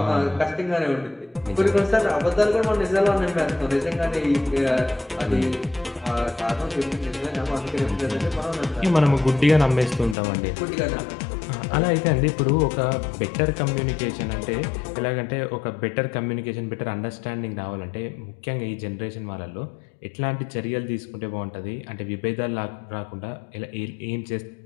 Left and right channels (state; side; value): drops out; right; at 10.2 s